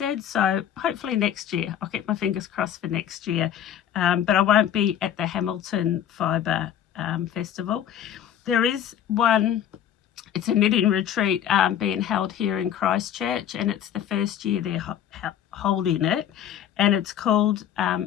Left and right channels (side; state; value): right; quieter; 10.1 dB